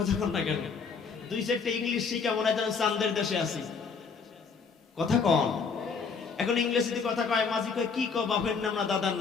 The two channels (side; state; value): right; quieter; 5.4 dB